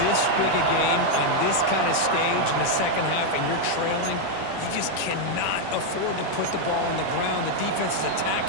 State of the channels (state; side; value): different; both; correlation 0.00